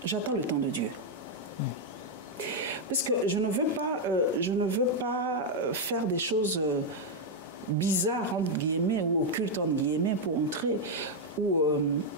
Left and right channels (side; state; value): both; normal; correlation -0.01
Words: J'attends le temps de Dieu. Parce que je ne veux pas faire des choses bizarres, entre guillemets, ou occultes, entre guillemets, pour entrer, ou